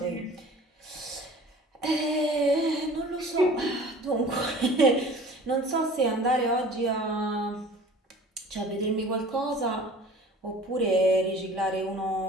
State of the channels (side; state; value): both; normal; correlation 0.45